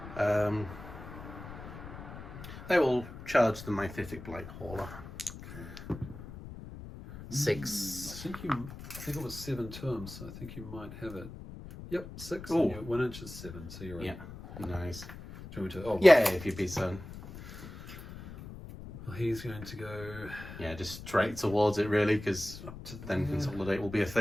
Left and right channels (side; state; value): left; noise; rumble, 13 dB below the sound